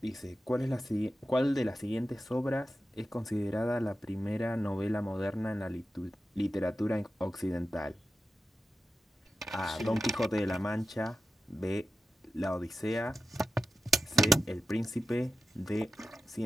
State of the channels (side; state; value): both; normal; correlation 0.92